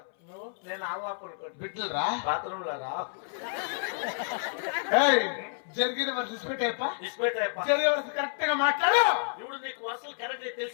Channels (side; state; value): right; silent; 58 dB below the other